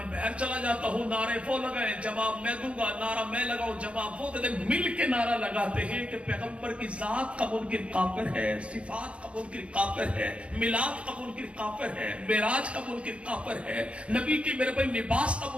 باہر چلا جاتا ہوں، نعرے وہ لگائیں جواب میں دوں گا، نعرہ میں لگاؤں جواب وہ دے، مل کے نعرہ لگاتے ہیں کہ پیغمبر کی ذات کا منکر کافر ہے، صفات کا منکر کافر ہے، میلاد کا منکر کافر ہے، معراج کا منکر کافر ہے، نبی کی میرے بھائی لباس کا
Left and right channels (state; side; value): late; left; 0.061 ms